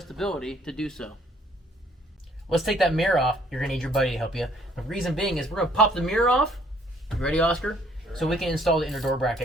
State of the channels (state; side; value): normal; both; correlation 0.62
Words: to do so. Let's take that mirror off. You're gonna need your buddy to help you. The reason being is we're gonna pop the mirror off. You ready, Oscar? So we can install the inner door